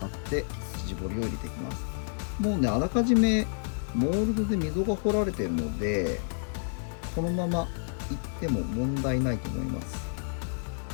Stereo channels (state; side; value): silent; right; 58 dB below the other